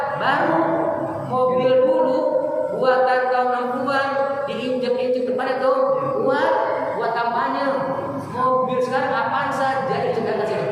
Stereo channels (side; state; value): both; identical; correlation 1.00